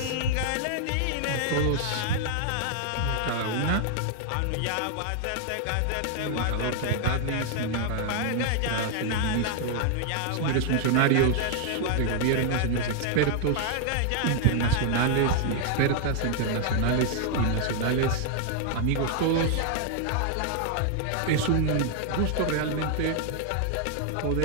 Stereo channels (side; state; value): both; different; correlation 0.00